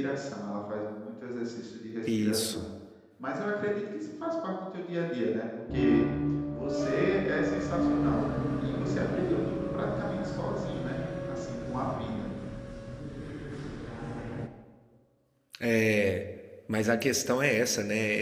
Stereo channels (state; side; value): identical; both; correlation 1.00